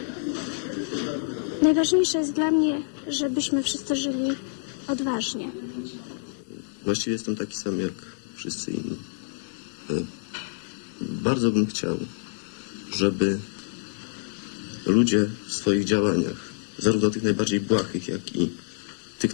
Najważniejsze jest dla mnie, żebyśmy wszyscy żyli odważnie. Właściwie jestem taki sam jak wszyscy inni. Bardzo bym chciał, żeby ludzie w swoich działaniach, zarówno tych najbardziej błahych, jak i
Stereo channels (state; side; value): silent; right; digital silence